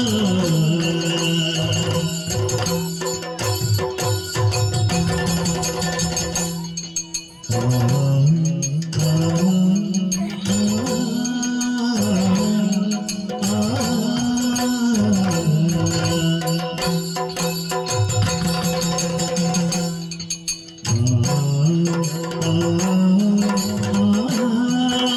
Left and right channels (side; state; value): both; identical; correlation 1.00